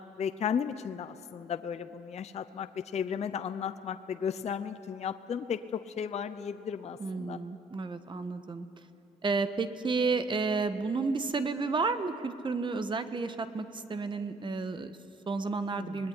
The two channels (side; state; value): both; normal; correlation 0.58